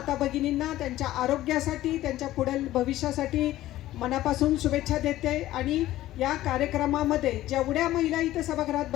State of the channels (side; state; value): right; quieter; 14.9 dB